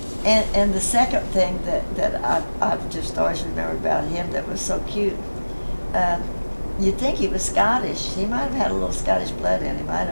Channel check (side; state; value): both; inverted; correlation -1.00